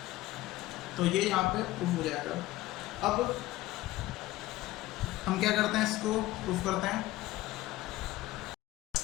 तो ये यहाँ पे प्रूफ हो जाएगा। अब हम क्या करते हैं, इसको प्रूफ करते हैं।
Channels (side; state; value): right; quieter; 17.0 dB